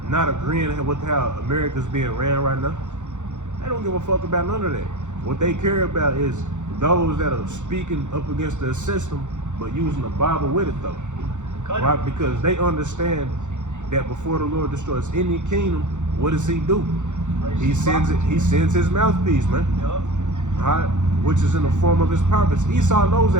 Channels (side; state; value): left; late; 0.85 ms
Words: not agreeing with how America's being ran right now. They don't give a fuck about none of that. What they care about is those that are speaking up against the system, but using the Bible with it though. Right? Because they understand that before the Lord destroys any kingdom, what does he do? He sends his mouthpiece, man. Yep. Right? Which is in the form of his prophets. Esau knows